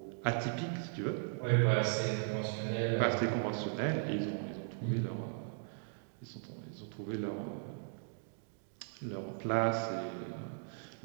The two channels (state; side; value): silent; left; digital silence